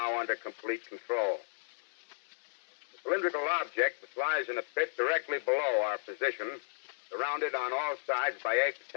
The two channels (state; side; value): silent; right; digital silence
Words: under complete control. The cylindrical object which lies in a pit directly below our position, surrounded on all sides by 8